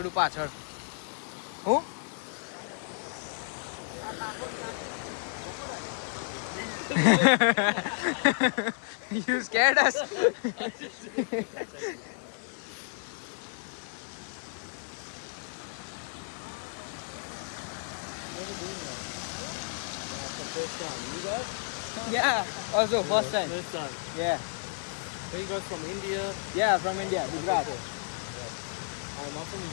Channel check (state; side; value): silent; right; 57 dB below the other